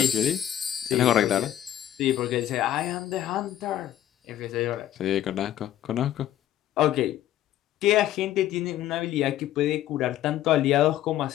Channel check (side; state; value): right; quieter; 12.2 dB